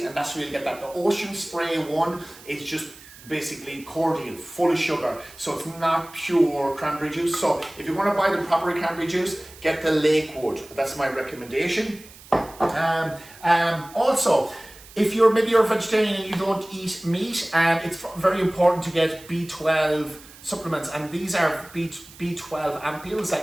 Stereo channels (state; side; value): noise; right; hiss, 20 dB below the sound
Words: and that's where you get that. The Ocean Spray one is just basically cordial, full of sugar. So it's not pure cranberry juice. So if you want to buy the proper cranberry juice, get the Lakewood. That's my recommendation. Also, if maybe you're a vegetarian and you don't eat meat, it's very important to get B12 supplements, and these are B12 ampules